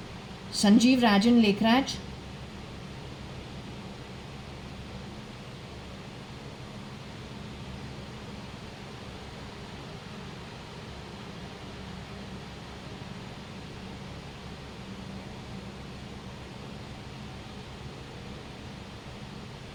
Sanjeev Rajan Lekhraj?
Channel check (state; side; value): identical; both; correlation 1.00